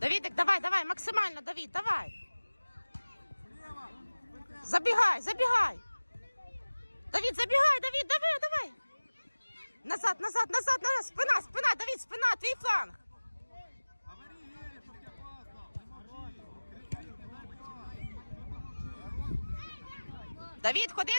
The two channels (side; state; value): both; inverted; correlation -1.00